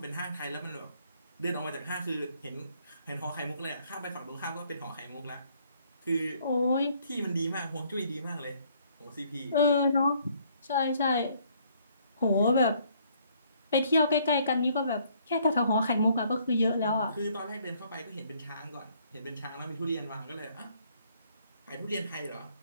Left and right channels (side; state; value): both; inverted; correlation -0.65